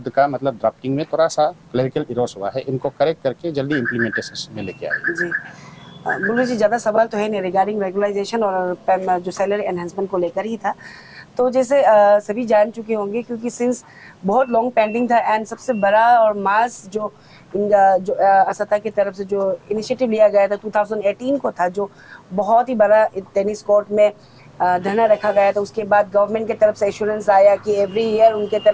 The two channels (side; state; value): both; identical; correlation 1.00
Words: का मतलब ड्राफ्टिंग में थोड़ा सा क्लरिकल इरोस हुआ है, इनको करेक्ट करके जल्दी इम्प्लीमेंटेशन में लेके आए जी। बुल्लू जी, ज़्यादा सवाल तो है नहीं, रिगार्डिंग रेगुलाइजेशन और जो सैलरी एनहांसमेंट को लेकर ही था। तो जैसे सभी जान चुके होंगे, क्योंकि सिंस बहुत लॉन्ग पेंडिंग था, एंड सबसे बड़ा और मास जो असता की तरफ से जो इनिशिएटिव लिया गया था 2018 को था, जो बहुत ही बड़ा टेनिस कोर्ट में धरना रखा गया था। उसके बाद गवर्नमेंट की तरफ से एश्योरेंस आया कि एवरी ईयर उनके